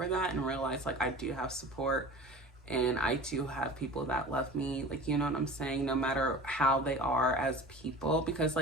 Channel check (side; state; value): both; normal; correlation 0.38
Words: that, and realize I do have support, and I do have people that love me, you know what I'm saying, no matter how they are as people. Because